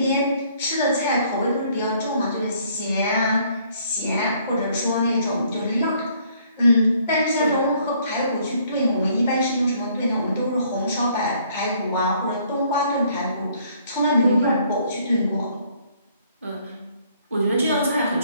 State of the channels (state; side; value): inverted; both; correlation -0.63